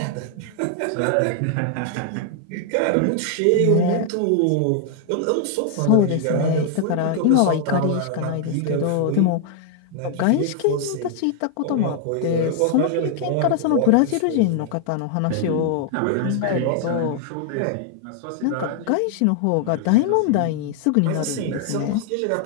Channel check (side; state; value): both; different; correlation 0.00